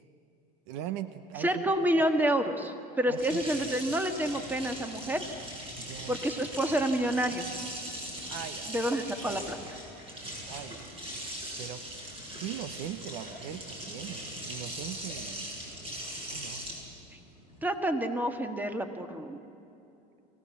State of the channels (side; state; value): both; normal; correlation 0.62